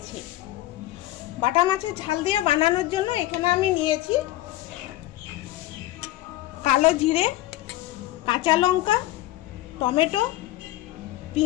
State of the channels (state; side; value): quieter; right; 16.1 dB